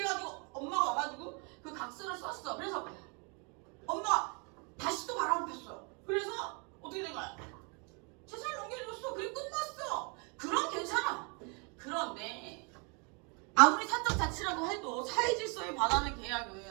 엄마가 와가지고 그 각서를 썼어. 그래서 엄마가 다시 또 바람을 폈어. 그래서 어떻게 된 거야? 재산을 넘겨줬어. 그리고 끝났어. 그럼 괜찮아. 그런데 아무리 사적 자치라고 해도 사회 질서에 반하는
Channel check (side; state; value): left; quieter; 33.8 dB